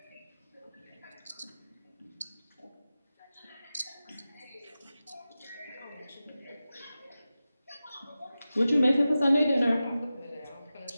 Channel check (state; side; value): inverted; both; correlation -0.94